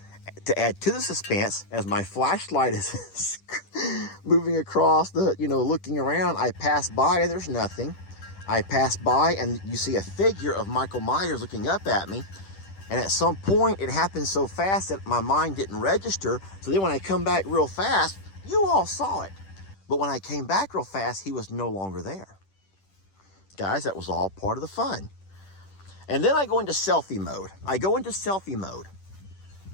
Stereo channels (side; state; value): right; late; 10 ms